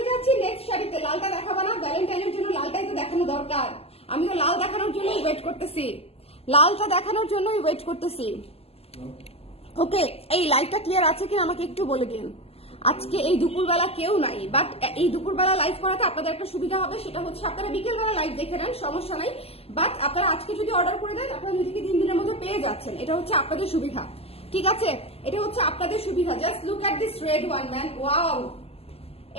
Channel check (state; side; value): late; right; 0.29 ms